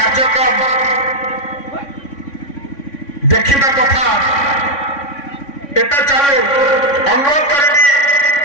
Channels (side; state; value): right; late; 3.6 ms